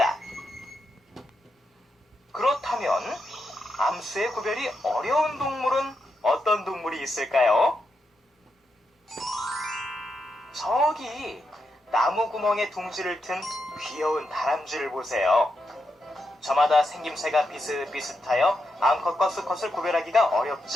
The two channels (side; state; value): both; normal; correlation 0.84